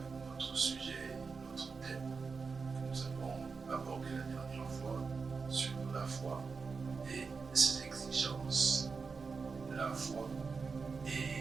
notre sujet, notre thème que nous avons abordé la dernière fois sur la foi et ses exigences. La foi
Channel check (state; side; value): quieter; left; 4.9 dB